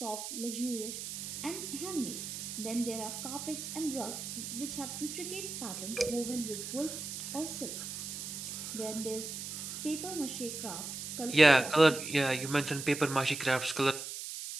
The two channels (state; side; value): noise; right; hiss, 6 dB below the sound